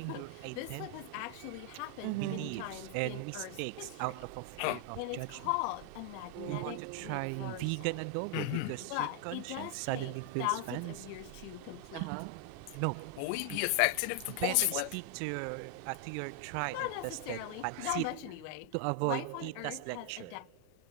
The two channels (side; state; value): both; different; correlation 0.00